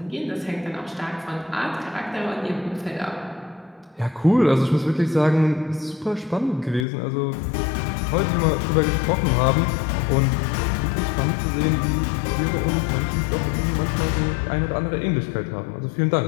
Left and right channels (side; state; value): right; drops out; at 6.9 s